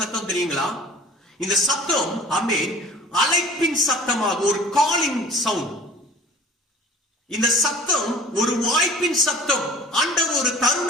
தெரியுங்களா? இந்த சத்தம் அழைப்பின் சத்தமாக, ஒரு காலிங் சவுண்ட். இந்த சத்தம் ஒரு வாய்ப்பின் சத்தம். ஆண்டவர் ஒரு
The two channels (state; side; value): normal; both; correlation 0.45